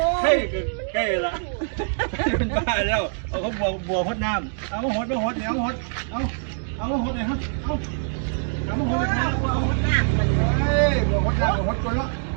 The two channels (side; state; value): left; silent; digital silence